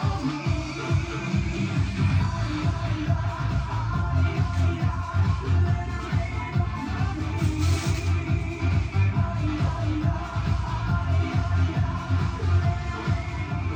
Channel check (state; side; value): identical; both; correlation 1.00